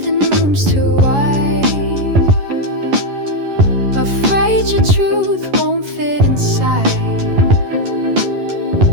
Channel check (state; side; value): late; left; 11 ms